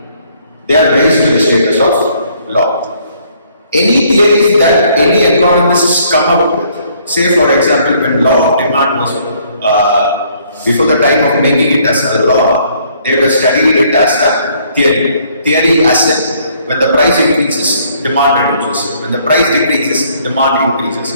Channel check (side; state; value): both; inverted; correlation -0.64